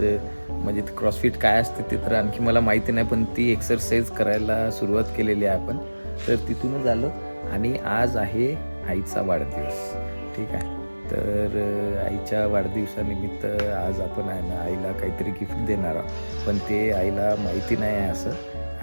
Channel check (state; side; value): inverted; both; correlation -1.00